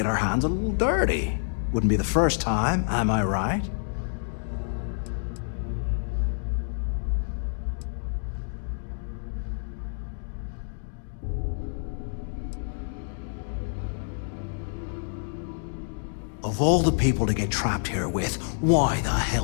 our hands a little dirty. Wouldn't be the first time, am I right? Of all the people to get trapped here with, why the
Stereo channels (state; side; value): silent; right; digital silence